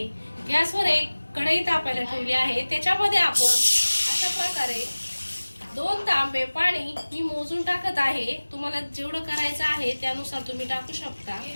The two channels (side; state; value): both; inverted; correlation -1.00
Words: गॅसवर एक कढई तापायला ठेवली आहे। त्याच्यामध्ये आपण अशा प्रकारे 2 तांबे पाणी मी मोजून टाकत आहे। तुम्हाला जेवढं करायचं आहे त्यानुसार तुम्ही टाकू शकता।